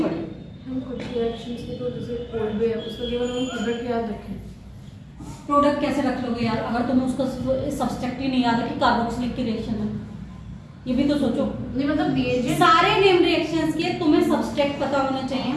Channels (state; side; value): identical; both; correlation 1.00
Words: पड़े। हम कुछ रिएक्शंस के तो जैसे कोड भी है, उसका केवल हम प्रोडक्ट याद रखें। प्रोडक्ट कैसे रख लोगे यार, अगर तुम्हें उसका सब्सट्रैक्ट ही नहीं याद है कि कार्बोक्सिलिक की रिएक्शन है, ये भी तो सोचो। नहीं मतलब दिए सारे नेम रिएक्शंस के तुम्हें सब्सट्रैक्ट पता होना चाहिए,